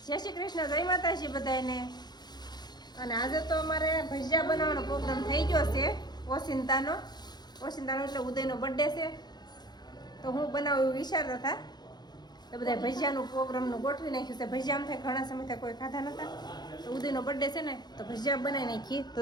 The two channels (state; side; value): late; right; 0.20 ms